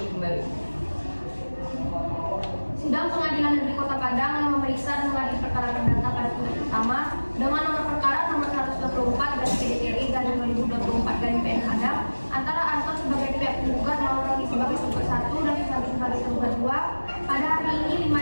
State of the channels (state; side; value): inverted; both; correlation -1.00